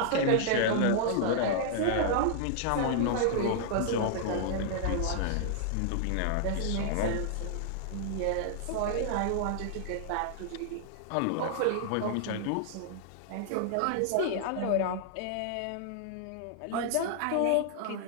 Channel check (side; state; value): both; different; correlation -0.01